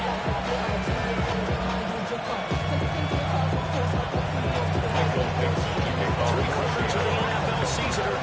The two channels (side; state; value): both; identical; correlation 1.00